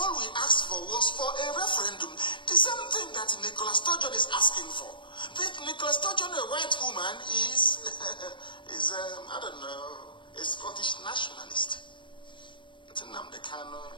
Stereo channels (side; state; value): right; late; 0.23 ms